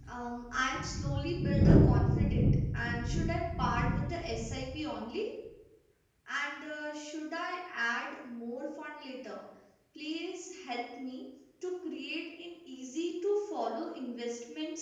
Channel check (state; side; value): identical; both; correlation 1.00